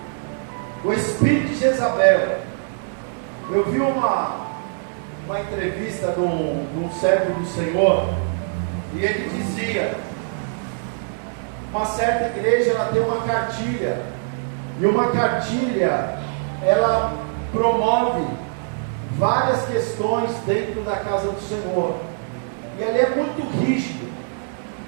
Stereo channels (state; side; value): silent; left; digital silence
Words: o espírito de Jezabel. Eu vi uma entrevista de um servo do Senhor, e ele dizia: uma certa igreja, ela tem uma cartilha, e uma cartilha, ela promove várias questões dentro da casa do Senhor, e ali é muito rígido,